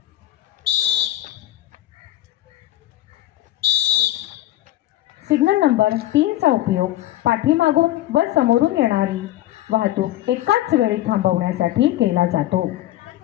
सिग्नल नंबर 3 चा उपयोग पाठीमागून व समोरून येणारी वाहतूक एकाच वेळी थांबवण्यासाठी केला जातो।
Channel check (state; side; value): quieter; right; 14.6 dB